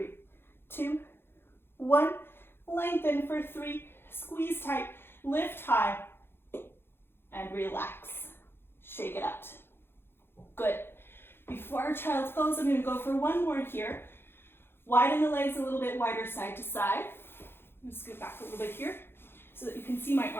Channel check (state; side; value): late; right; 0.11 ms